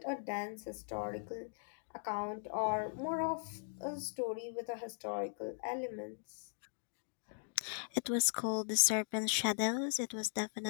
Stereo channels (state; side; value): silent; right; digital silence